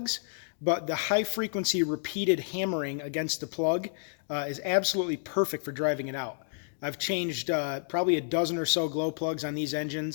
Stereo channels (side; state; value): right; silent; digital silence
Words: but the high frequency repeated hammering against the plug is absolutely perfect for driving it out. I've changed probably a dozen or so glow plugs on these